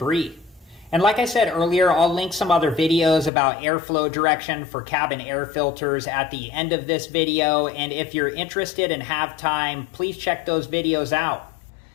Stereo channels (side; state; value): right; drops out; at 3.3 s